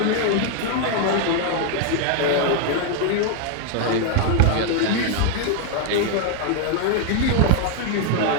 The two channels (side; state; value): both; different; correlation 0.01